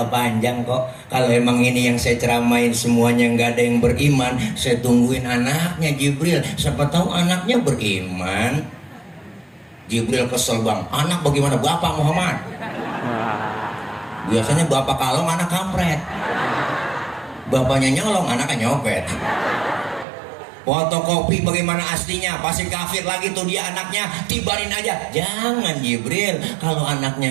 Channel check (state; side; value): drops out; left; at 20.1 s